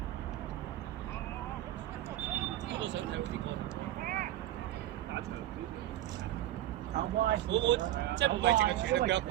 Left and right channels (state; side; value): quieter; left; 13.7 dB